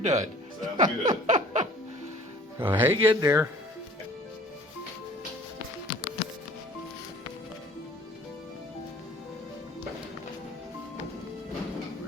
Sounds good. So hang in there.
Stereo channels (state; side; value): normal; both; correlation 0.50